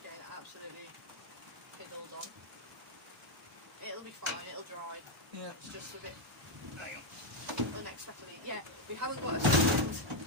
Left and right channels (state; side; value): normal; both; correlation 0.03